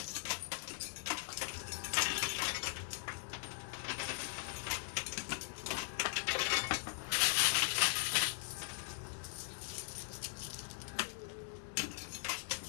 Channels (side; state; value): right; silent; 51 dB below the other